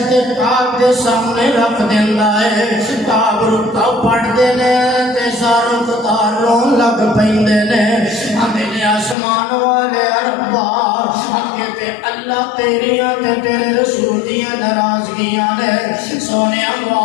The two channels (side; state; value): right; drops out; at 9.2 s